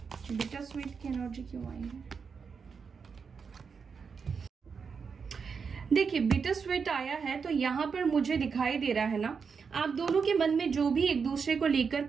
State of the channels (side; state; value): left; quieter; 5.8 dB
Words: बिटर स्वीट की एनर्जी क्यों आई है? देखिए बिटर स्वीट आया है तो यहाँ पर मुझे दिखाई दे रहा है ना, आप दोनों के मन में जो भी एक दूसरे को लेकर